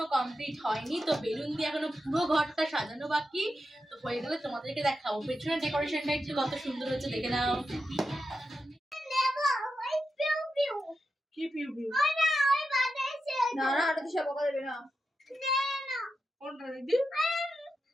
কমপ্লিট হয়নি। তো বেলুন দিয়ে এখনো পুরো ঘরটা সাজানো বাকি। তো হয়ে গেলে তোমাদেরকে দেখাবো। পেছনের ডেকোরেশনটা একটু কত সুন্দর হয়েছে দেখে নাও। কি পিউ পিউ? না না, এটা তো সব বকা দেবে না। কোনটা দিদি?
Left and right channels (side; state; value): both; normal; correlation 0.88